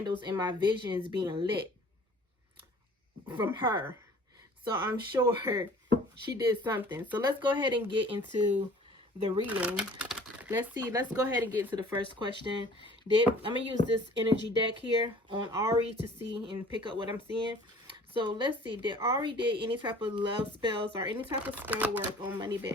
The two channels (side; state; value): both; normal; correlation 0.50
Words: in my visions being lit from her, so I'm sure she did something. So let's go ahead and get into the reading. Let's go ahead and get into the first question. I'm gonna use this energy deck here on Ari to see and pick up what I'm seeing. So let's see, did Ari did any type of love spells or any type of spell work on